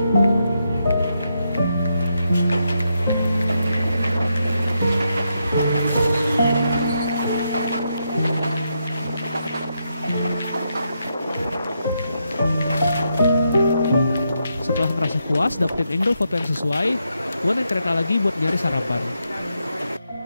Setelah merasa puas dapetin angle foto yang sesuai, gue naik kereta lagi buat nyari sarapan.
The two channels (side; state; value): both; inverted; correlation -0.82